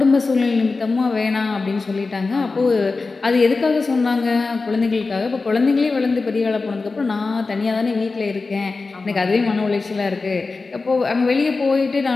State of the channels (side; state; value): right; quieter; 3.9 dB